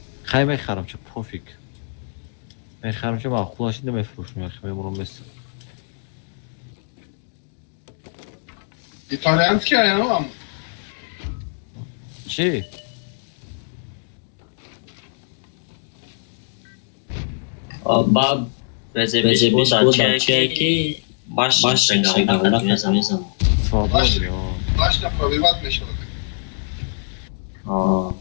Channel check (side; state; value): right; silent; digital silence